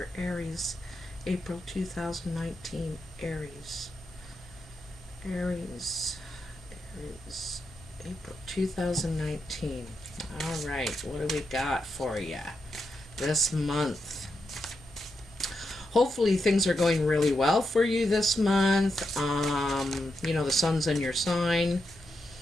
Aries? April 2019, Aries. Aries, April 2019. All right, what do we got for you this month? Hopefully things are going really well for you this month. The sun's in your sign.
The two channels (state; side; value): normal; both; correlation 0.85